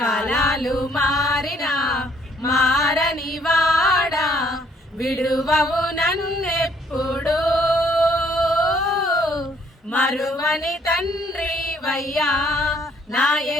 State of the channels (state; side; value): normal; both; correlation 0.64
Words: మారినా మారని వాడా విడువవు నన్నెప్పుడు మరువని తండ్రి వయ్యా నా